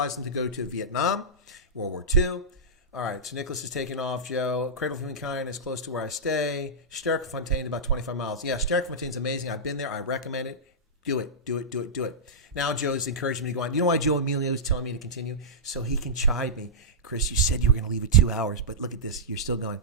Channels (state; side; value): normal; both; correlation -0.13